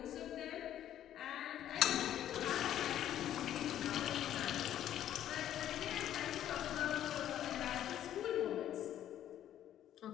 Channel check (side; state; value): right; quieter; 11.4 dB